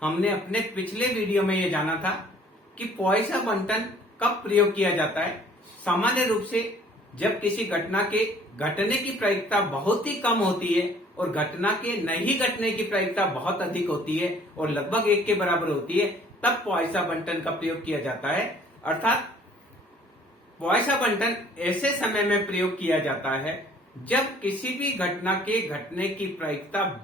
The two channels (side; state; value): both; normal; correlation 0.56